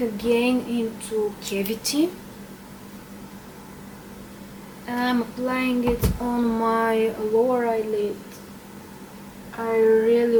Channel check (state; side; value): identical; both; correlation 1.00